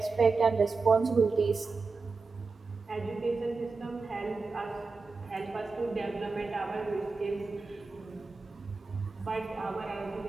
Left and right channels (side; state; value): left; quieter; 4.2 dB